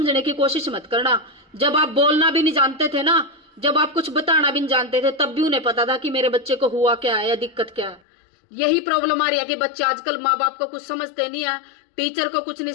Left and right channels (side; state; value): right; drops out; at 8.0 s